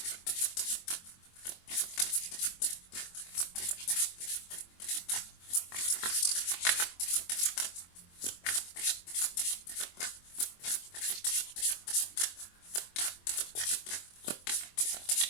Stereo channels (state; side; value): late; right; 23 ms